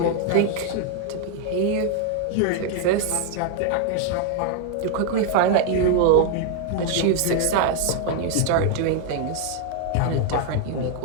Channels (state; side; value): different; both; correlation 0.00